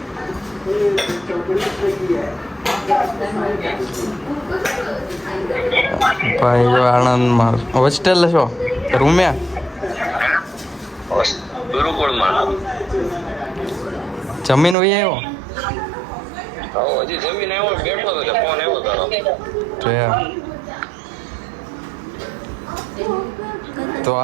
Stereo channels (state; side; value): drops out; left; at 14.8 s